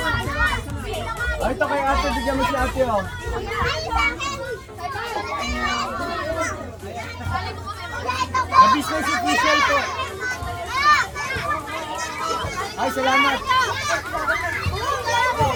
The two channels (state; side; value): identical; both; correlation 1.00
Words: Ay, ito kay ate, bigyan mo si ate, oh. Na-business official po. Ay, salamat.